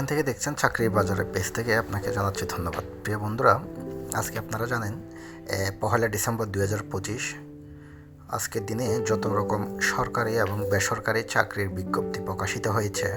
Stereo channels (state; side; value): identical; both; correlation 1.00